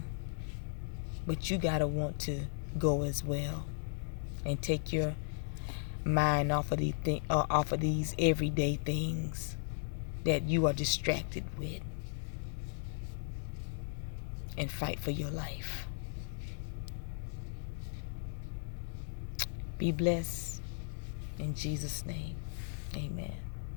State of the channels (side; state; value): right; silent; digital silence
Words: But you got to want to go as well. And take your mind off of these everyday things that you are distracted with. And fight for your life. Be blessed. In Jesus' name, amen.